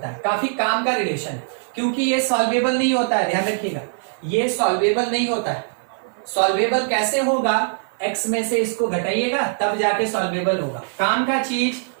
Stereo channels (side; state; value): left; silent; 55 dB below the other